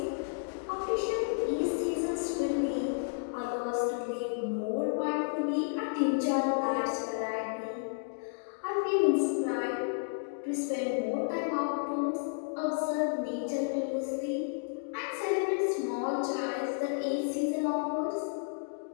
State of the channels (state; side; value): silent; right; digital silence